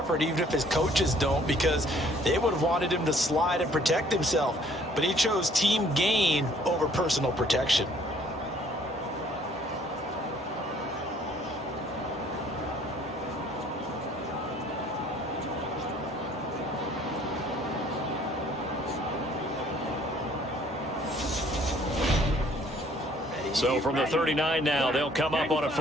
even if his coaches don't, because they would have wanted him to slide and protect himself. But he chose team gain over personal protection. So from the 39 now, they'll come up on a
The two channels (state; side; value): normal; both; correlation 0.59